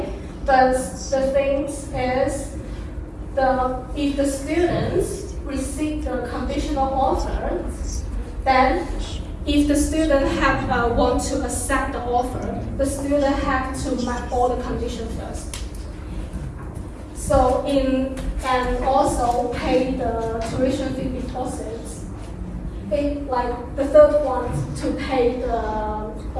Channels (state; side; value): identical; both; correlation 1.00